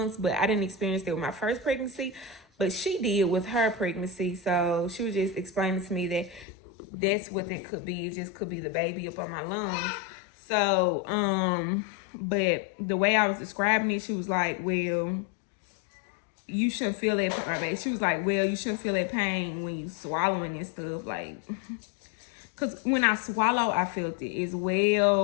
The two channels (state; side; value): drops out; right; at 6.5 s